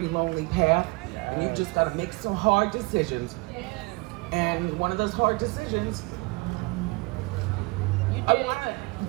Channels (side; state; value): left; quieter; 25.8 dB